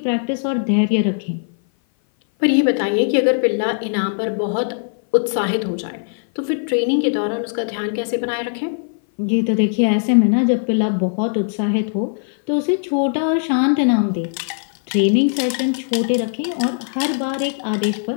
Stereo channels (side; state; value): right; silent; 57 dB below the other